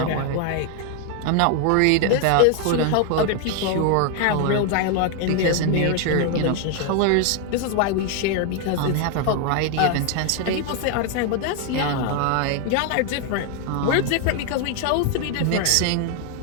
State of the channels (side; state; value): both; different; correlation 0.01